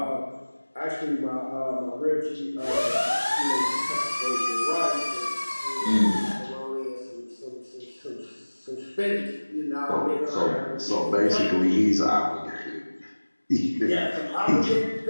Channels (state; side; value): inverted; both; correlation -1.00